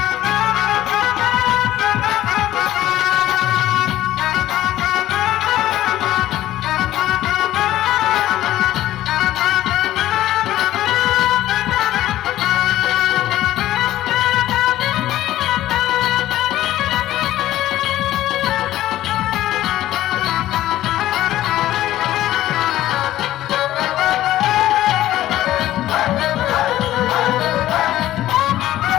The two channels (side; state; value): right; quieter; 14.2 dB